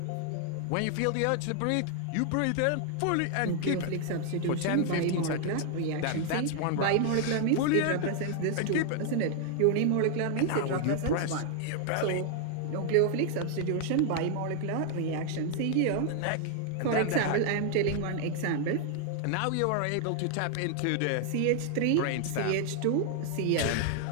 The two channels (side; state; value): both; different; correlation 0.00